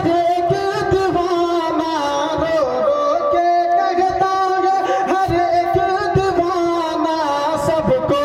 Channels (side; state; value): both; identical; correlation 1.00